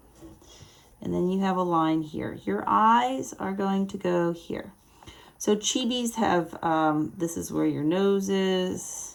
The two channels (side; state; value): both; identical; correlation 1.00